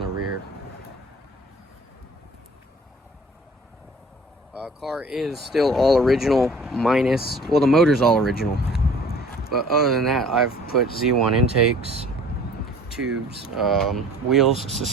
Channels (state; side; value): normal; both; correlation 0.49